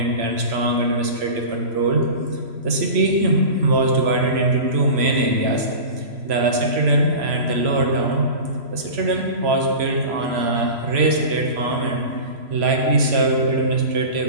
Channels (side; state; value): left; late; 3.0 ms